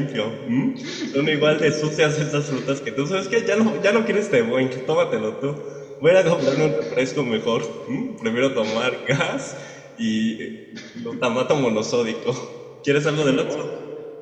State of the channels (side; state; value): both; identical; correlation 1.00